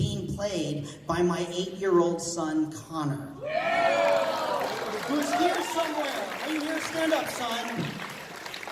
played by my 8-year-old son, Connor. Who's here somewhere. Are you here? Stand up, son.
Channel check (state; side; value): identical; both; correlation 1.00